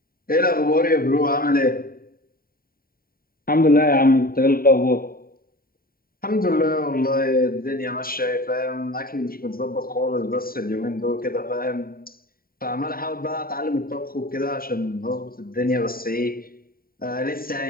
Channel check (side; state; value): right; late; 0.43 ms